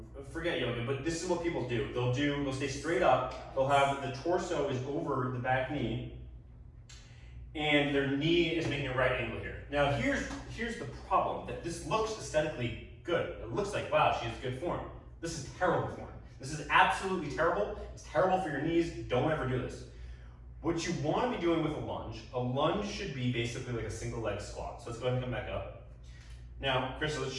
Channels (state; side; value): identical; both; correlation 1.00